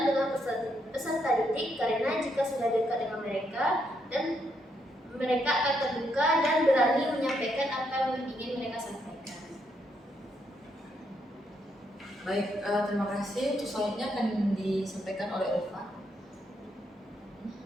dengan peserta didik, karena jika sudah dekat dengan mereka, dan mereka akan terbuka dan berani menyampaikan apa yang ingin mereka sampaikan. Baik, terima kasih. Untuk selanjutnya akan disampaikan oleh Ulfa.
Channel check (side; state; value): both; normal; correlation 0.77